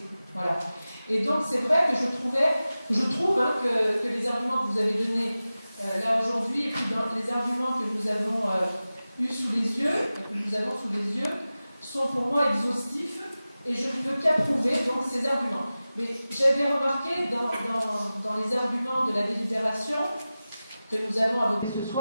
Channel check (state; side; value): inverted; both; correlation -0.96